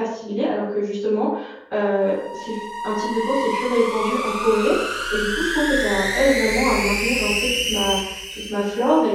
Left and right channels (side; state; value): both; identical; correlation 1.00